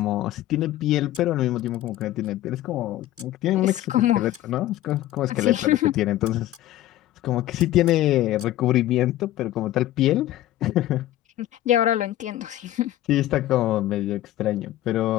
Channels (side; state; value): right; quieter; 14.2 dB